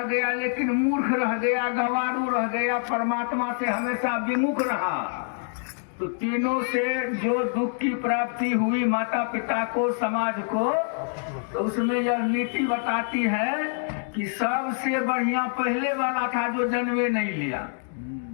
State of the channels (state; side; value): silent; right; 57 dB below the other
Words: गया लेकिन मूर्ख रह गया, गंवारू रह गया, परमात्मा से हमेशा विमुख रहा, तो तीनों से जो दुख की प्राप्ति हुई माता पिता को, समाज को, तो उसमें यह नीति बताती है कि सबसे बढ़िया पहले वाला था जो जन्मे नहीं लिया,